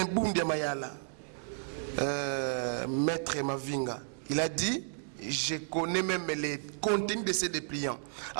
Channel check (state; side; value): silent; left; digital silence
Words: Bundia Mayala, Maître Mavinga. Il a dit, je connais même les contenus de ces dépliants.